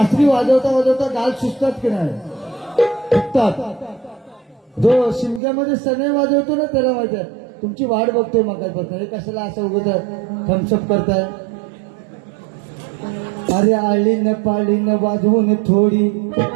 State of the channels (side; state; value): left; drops out; at 5.4 s